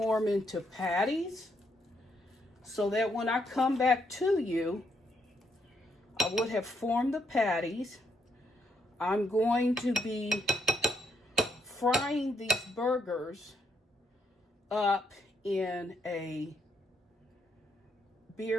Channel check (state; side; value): normal; both; correlation 0.75